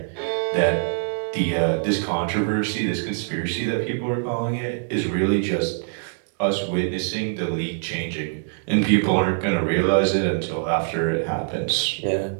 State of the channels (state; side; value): silent; left; 63 dB below the other